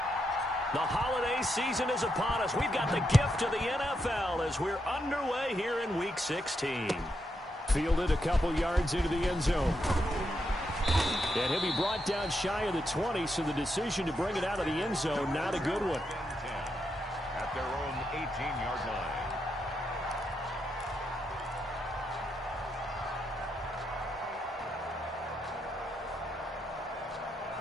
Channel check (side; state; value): both; normal; correlation 0.82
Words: The holiday season is upon us. We've got the gift of the NFL as we're underway here in Week 16. Fielded a couple yards into the end zone. And he'll be brought down shy of the 20, so the decision to bring it out of the end zone, not a good one. At their own 18-yard line.